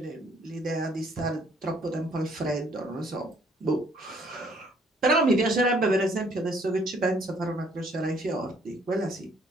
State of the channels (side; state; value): both; normal; correlation 0.64